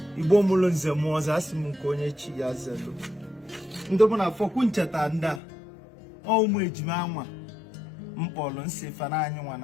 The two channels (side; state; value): right; drops out; at 5.4 s